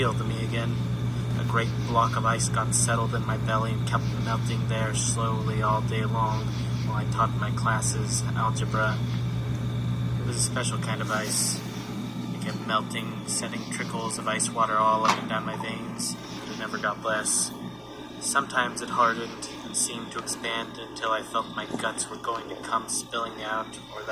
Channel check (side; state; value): both; identical; correlation 1.00